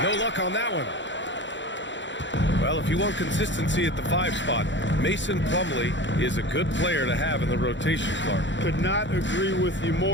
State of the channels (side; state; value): right; late; 0.54 ms